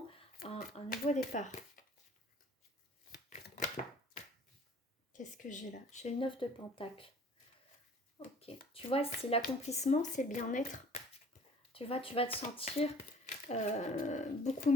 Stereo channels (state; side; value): normal; both; correlation 0.52